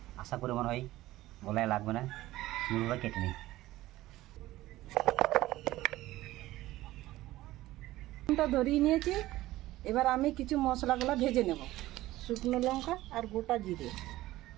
আশা করে মনে হয় গলায় লাগবে না। সুন্দরভাবে কেটে নিই। ধরিয়ে নিয়েছি। এবার আমি কিছু মশলাগুলো ভেজে নেব। শুকনো লঙ্কা আর গোটা জিরে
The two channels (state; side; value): quieter; left; 16.6 dB